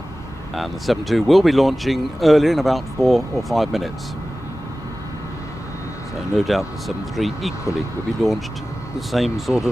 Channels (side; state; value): both; normal; correlation 0.96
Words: and the 7.2 will be launching earlier in about 4 or 5 minutes. So no doubt the 7.3 equally will be launched the same sort